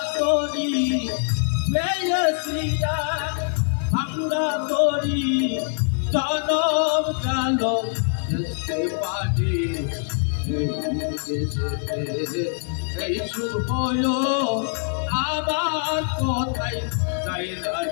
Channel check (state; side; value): silent; right; 63 dB below the other